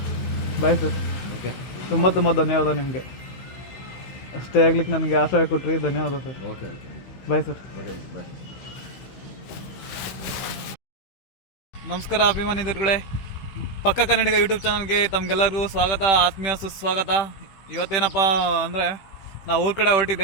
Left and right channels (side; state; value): right; late; 15 ms